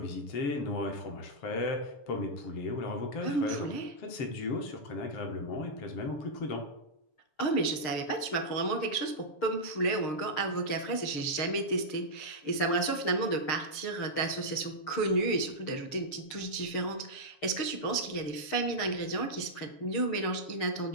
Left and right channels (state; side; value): late; right; 6.6 ms